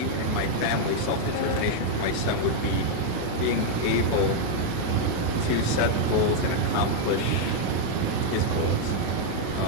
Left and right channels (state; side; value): different; both; correlation 0.00